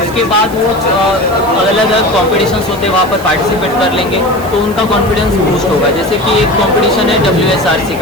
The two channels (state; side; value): noise; right; hiss, 18 dB below the sound